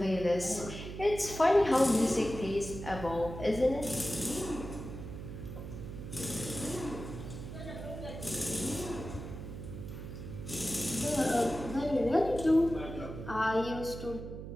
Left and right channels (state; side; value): noise; right; hum, 9 dB below the sound